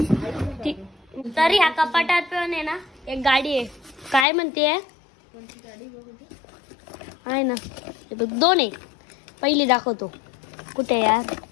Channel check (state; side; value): drops out; right; at 4.2 s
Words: तरी ह्या कपाटात पण आहे ना एक गाडी आहे. काय म्हणते आहे ना, हे बघ 2 आहे. पहिली दाखवतो. कुठे यार,